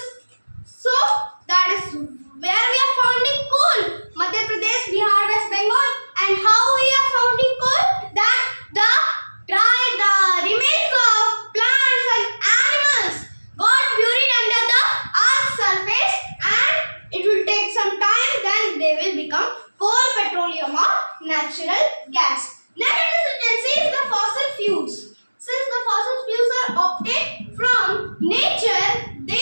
So that is where we are finding coal, Madhya Pradesh, Bihar, West Bengal. And how we are finding coal? That the remains of plants and animals got buried under the earth's surface, and it will take some time, then they will become coal, petroleum, or natural gas. Next it is the fossil fuels. Since the fossil fuels are obtained from nature,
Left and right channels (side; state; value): both; inverted; correlation -1.00